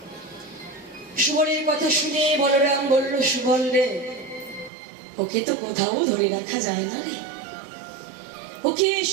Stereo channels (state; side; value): drops out; left; at 4.7 s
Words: সুবলের কথা শুনে বলরাম বলল, সুবল রে ওকে তো কোথাও ধরে রাখা যায় না রে, ওকে